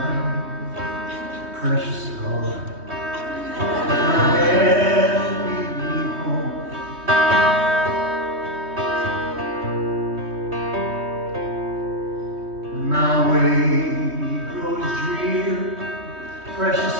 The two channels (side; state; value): left; late; 3.2 ms